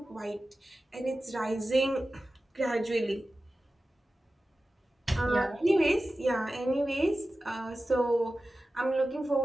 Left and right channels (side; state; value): both; normal; correlation 0.95